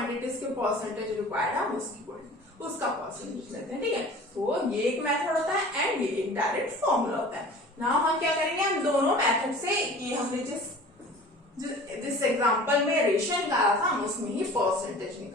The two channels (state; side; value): normal; both; correlation 0.43